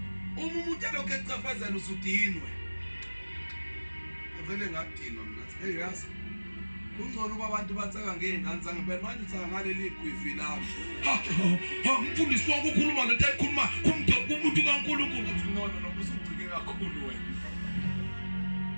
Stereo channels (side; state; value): both; inverted; correlation -1.00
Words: umuntu lokho ecafazela usudinwe avele ngadinwa mina hey yazi kungcono uba abantu batsaka ngeingane zange phela manje utsaka ngaleli gwivi lami umfundisi wakho ukhuluma lento ayikhuluma kumuntu kaNkulunkulu uthi no usucike kakhulu wena